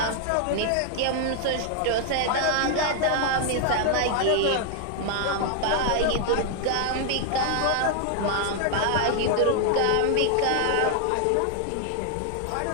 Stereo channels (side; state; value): both; different; correlation 0.00